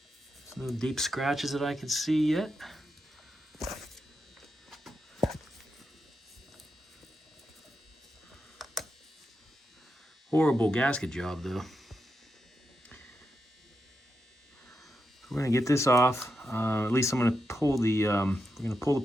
There's no deep scratches that I can see yet. Horrible gasket job, though. We're gonna get this off. At least I'm gonna pull the we're gonna pull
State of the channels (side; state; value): both; normal; correlation 0.86